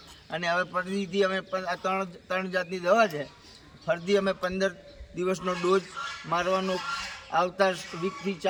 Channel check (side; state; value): both; identical; correlation 1.00